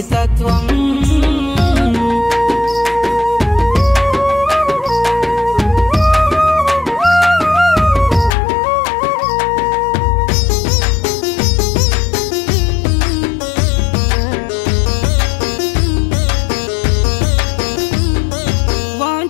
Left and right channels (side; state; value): right; drops out; at 8.3 s